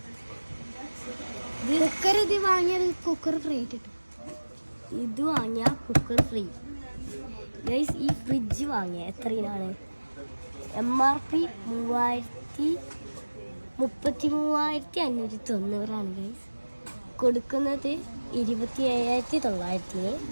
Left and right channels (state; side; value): inverted; both; correlation -1.00